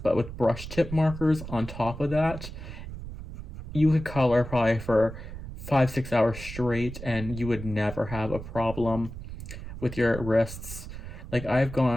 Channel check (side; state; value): right; noise; rumble, 10 dB below the sound